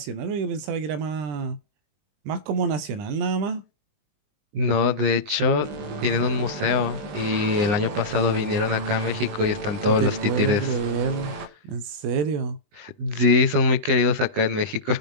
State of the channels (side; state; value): left; late; 20 ms